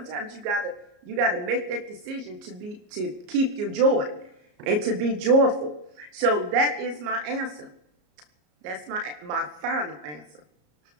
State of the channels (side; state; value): left; late; 34 ms